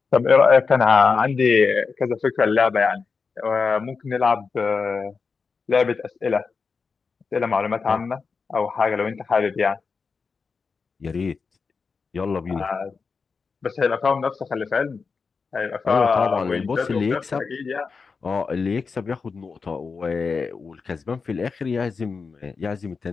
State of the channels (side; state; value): right; quieter; 5.0 dB